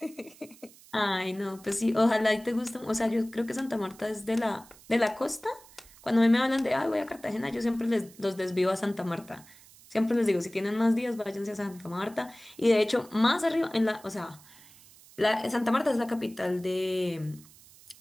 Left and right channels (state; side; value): noise; right; hiss, 23 dB below the sound